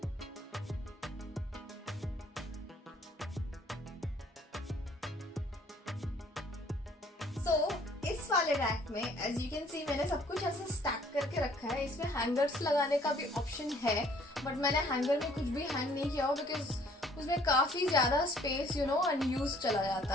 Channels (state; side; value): normal; both; correlation 0.59